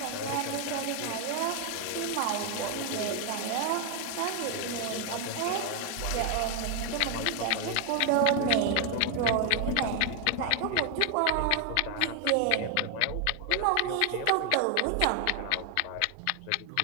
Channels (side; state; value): both; different; correlation 0.00